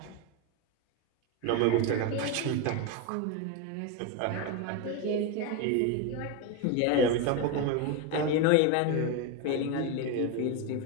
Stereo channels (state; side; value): different; both; correlation 0.03